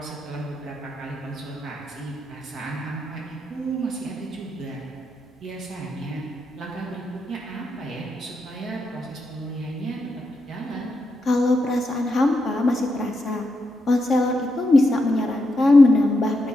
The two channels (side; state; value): both; normal; correlation 0.84